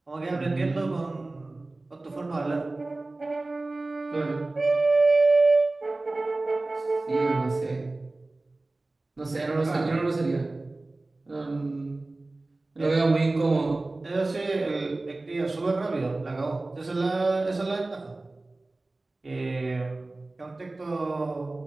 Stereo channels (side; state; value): left; quieter; 3.0 dB